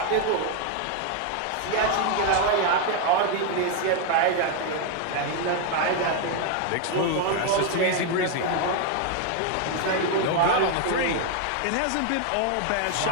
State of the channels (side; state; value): both; different; correlation 0.01